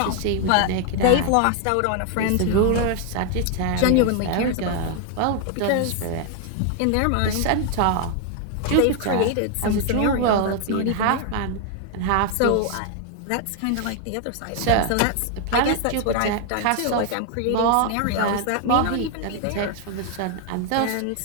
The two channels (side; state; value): both; different; correlation 0.00